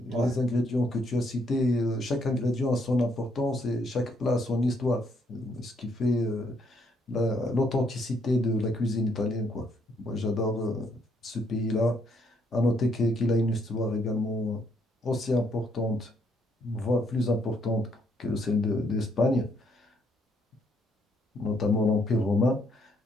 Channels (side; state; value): both; normal; correlation 0.72